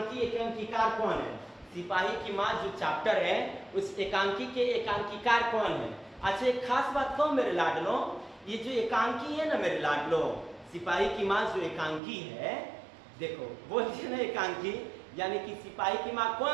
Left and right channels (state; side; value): drops out; left; at 12.0 s